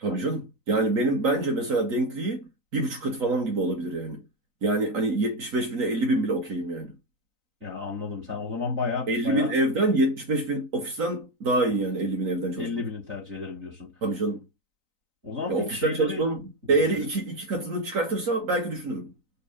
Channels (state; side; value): late; left; 3.9 ms